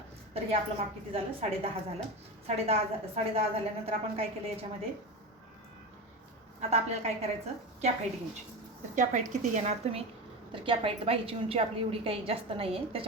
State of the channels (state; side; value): normal; both; correlation 0.24